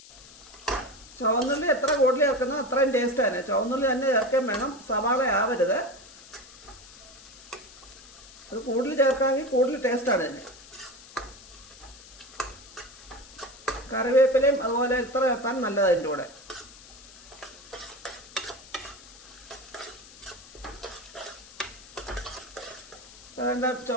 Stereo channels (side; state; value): left; noise; hiss, 19 dB below the sound